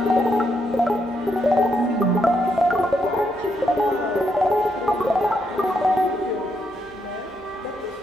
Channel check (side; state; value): both; normal; correlation 0.78